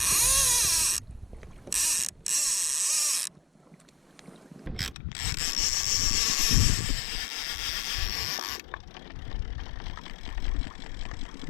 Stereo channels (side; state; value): right; drops out; at 5.0 s